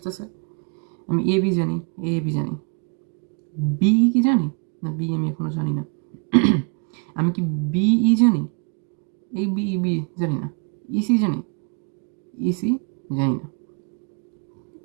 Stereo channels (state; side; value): quieter; left; 35.0 dB